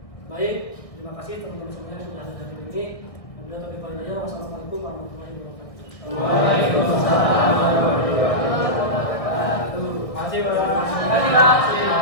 Baik, terima kasih teman-teman semuanya sudah hadir hari ini. Wassalamualaikum warahmatullahi wabarakatuh. Waalaikumsalam.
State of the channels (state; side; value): late; right; 1.6 ms